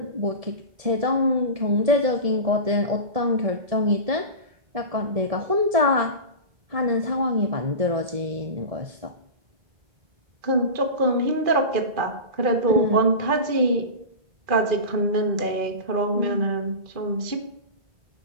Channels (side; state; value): left; late; 1.7 ms